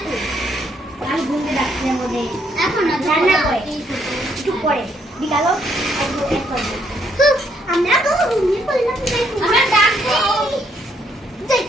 কি? আমি ঘুমতে ডাকছি মধ্যে। এখন না রান্না করে। একটু পরে বিকালও এক করব। আমরা তো ঘুমিয়ে পড়লাম তাই আমরা ডাকবো। যাই।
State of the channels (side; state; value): both; normal; correlation 0.72